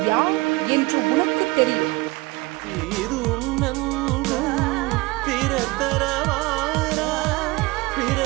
யார் என்று உனக்கு தெரியும்.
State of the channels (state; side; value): quieter; left; 22.6 dB